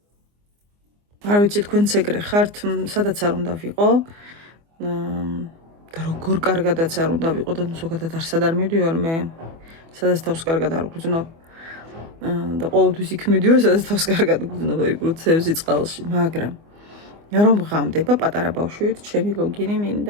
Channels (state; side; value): late; left; 24 ms